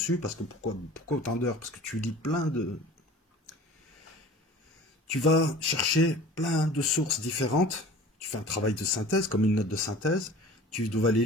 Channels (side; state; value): both; normal; correlation 0.43